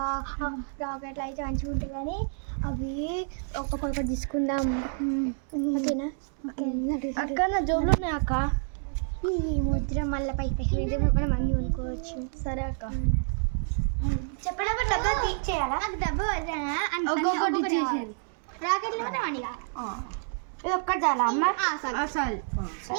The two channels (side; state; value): left; silent; 59 dB below the other